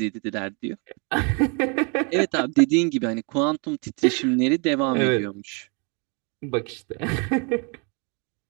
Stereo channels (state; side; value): quieter; left; 34.0 dB